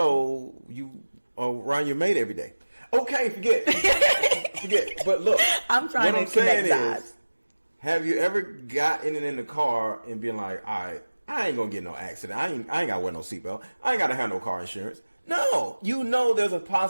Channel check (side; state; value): both; inverted; correlation -1.00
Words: you are around your mate every day. Okay, forget. But look, I'm trying what to I'm saying connect dots. is, have you ever gotten in the car and been like, all right, I ain't gonna get no accident. I ain't gotta wear no seatbelt. I ain't gotta have no car insurance. No, you know there's a